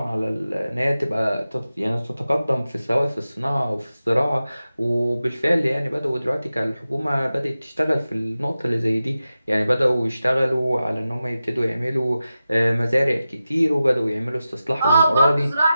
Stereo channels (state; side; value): inverted; both; correlation -0.93